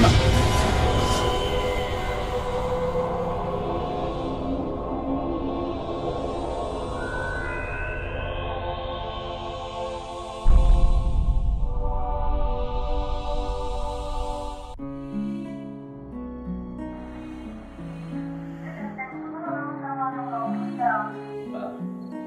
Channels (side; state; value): both; identical; correlation 1.00